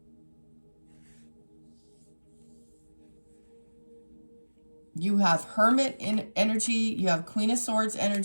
You have Hermit in energy. You have Queen of Swords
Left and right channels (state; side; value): inverted; both; correlation -1.00